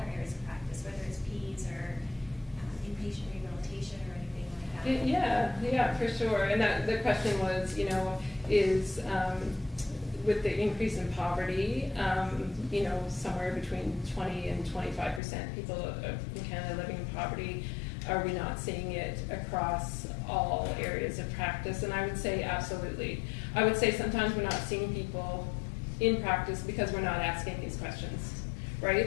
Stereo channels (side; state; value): right; drops out; at 15.2 s